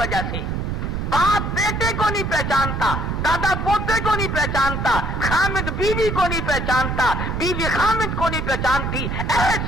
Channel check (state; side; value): noise; right; rumble, 2 dB below the sound